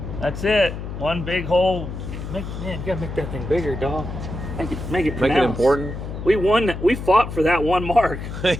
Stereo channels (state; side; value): noise; left; hum, 8 dB below the sound